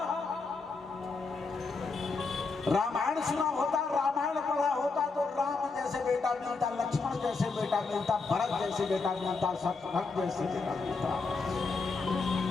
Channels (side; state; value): right; quieter; 4.2 dB